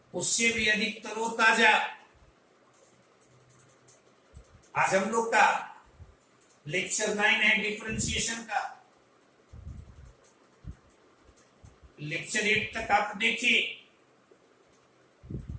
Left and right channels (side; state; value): both; identical; correlation 1.00